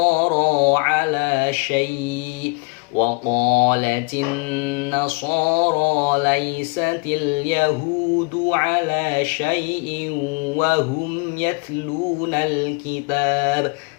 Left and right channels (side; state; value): right; quieter; 31.3 dB